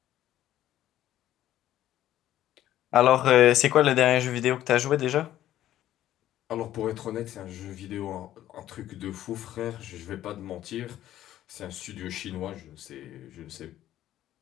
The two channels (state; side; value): quieter; right; 12.9 dB